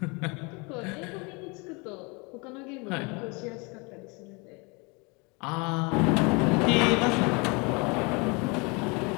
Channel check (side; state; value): right; quieter; 29.5 dB